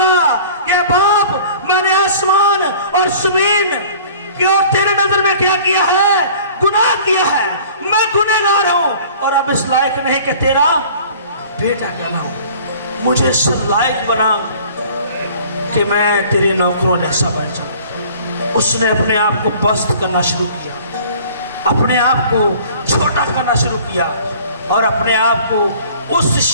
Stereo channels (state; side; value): inverted; both; correlation -0.48